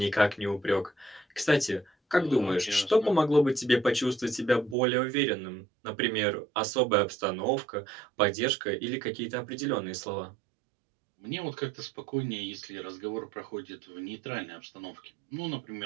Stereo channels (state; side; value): drops out; left; at 4.8 s